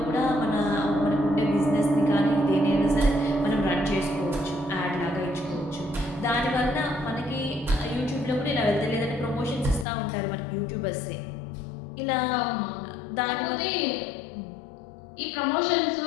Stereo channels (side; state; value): right; drops out; at 9.9 s